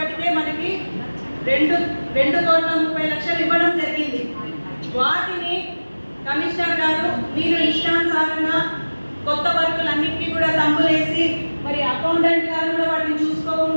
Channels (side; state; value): both; inverted; correlation -1.00